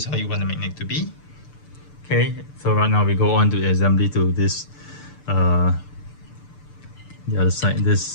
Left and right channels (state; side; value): late; right; 6.8 ms